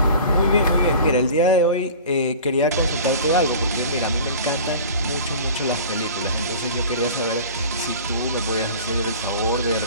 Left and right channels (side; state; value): both; inverted; correlation -0.40